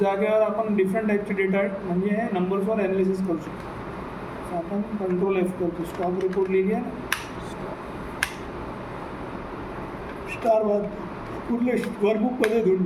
आपण डिफरंट टाईपचे डेटा म्हणजे नंबर्सवर ॲनालिसिस करू शकतो. तर आपण कंट्रोल एफ करतो. स्टॉक रिपोर्ट लिहिली आहे ना. स्टार कुठले वर्कबुकमध्ये धुंड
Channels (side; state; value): both; identical; correlation 1.00